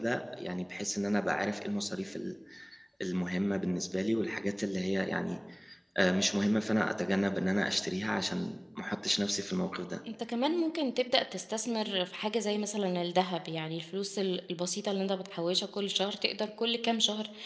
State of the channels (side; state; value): both; identical; correlation 1.00